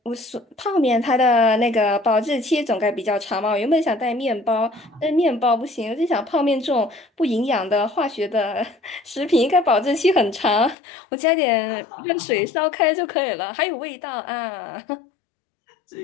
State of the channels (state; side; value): drops out; right; at 10.8 s